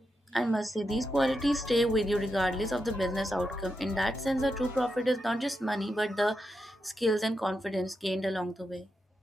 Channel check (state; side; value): normal; both; correlation 0.86